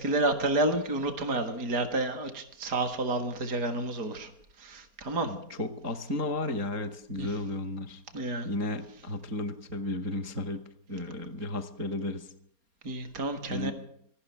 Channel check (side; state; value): left; late; 4.3 ms